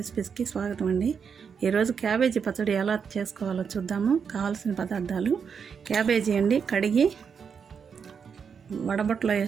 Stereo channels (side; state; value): left; quieter; 6.5 dB